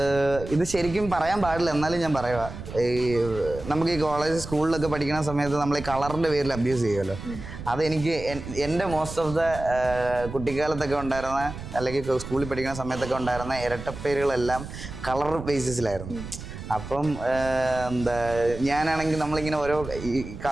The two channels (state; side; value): noise; right; rumble, 11 dB below the sound